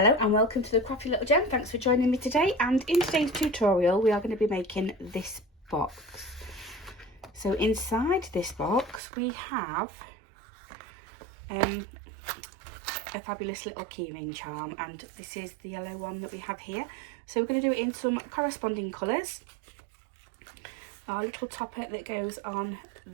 and welcome to the Crafty Little Gem. Thanks for joining me today, and in today's tutorial we are going to be making this box. So inside this box we have a fabulous little keyring charm, and this is the yellow one that we have here. So we're going to do it in some corresponding colours. Our little topper that goes on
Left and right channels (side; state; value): left; drops out; at 9.0 s